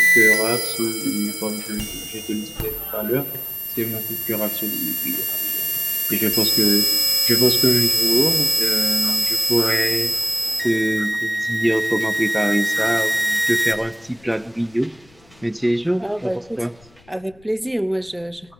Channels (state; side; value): noise; left; rumble, 28 dB below the sound